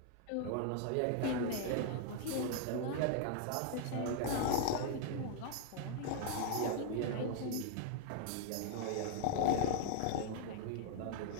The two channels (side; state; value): both; different; correlation 0.00